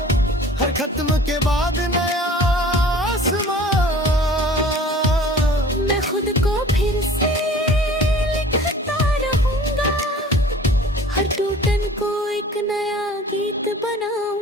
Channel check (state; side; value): normal; both; correlation 0.46